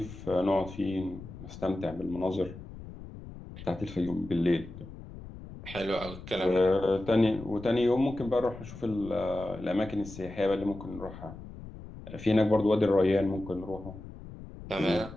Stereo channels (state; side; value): noise; left; rumble, 14 dB below the sound